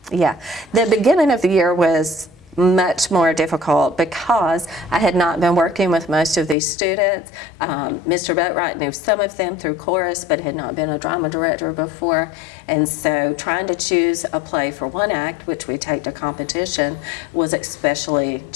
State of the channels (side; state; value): right; drops out; at 6.6 s